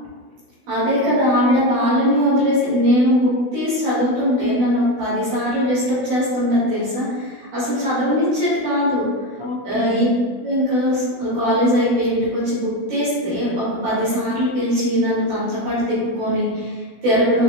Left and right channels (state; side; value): late; left; 16 ms